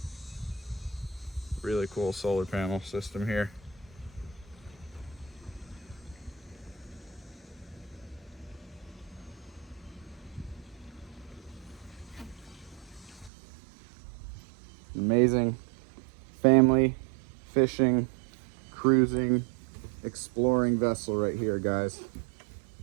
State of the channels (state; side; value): drops out; left; at 13.3 s